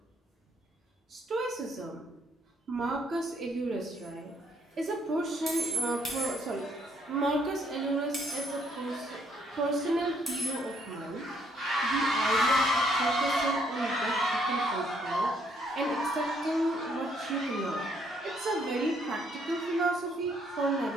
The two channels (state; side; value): normal; both; correlation 0.69